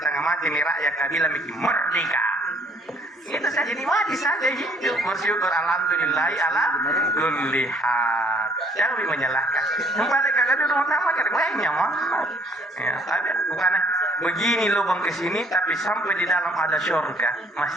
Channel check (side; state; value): both; normal; correlation 0.61